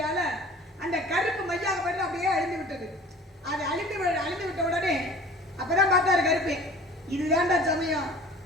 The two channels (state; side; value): normal; both; correlation 0.45